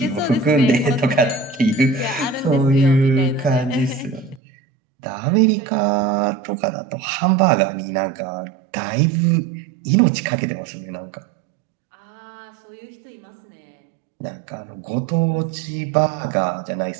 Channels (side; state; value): left; drops out; at 4.4 s